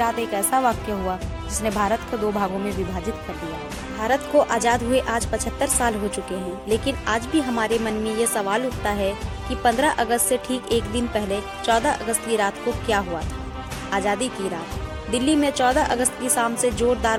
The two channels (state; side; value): identical; both; correlation 1.00